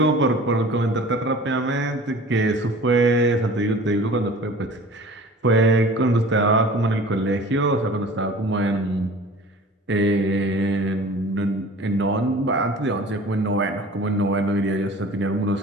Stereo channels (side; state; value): both; normal; correlation 0.43